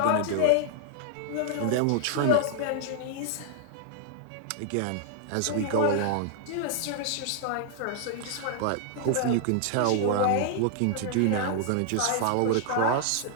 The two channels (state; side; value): different; both; correlation 0.00